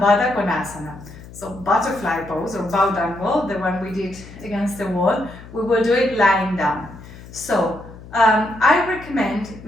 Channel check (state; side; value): noise; left; hum, 17 dB below the sound